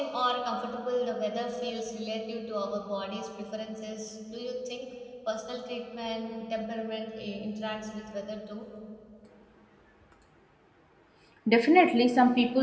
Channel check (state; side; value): identical; both; correlation 1.00